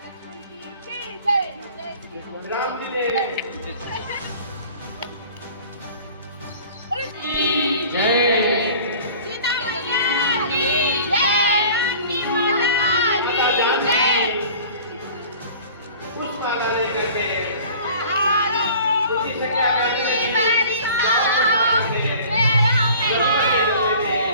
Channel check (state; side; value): inverted; both; correlation -0.46